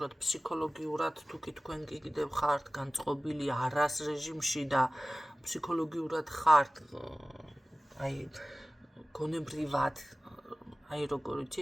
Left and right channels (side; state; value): both; normal; correlation 0.96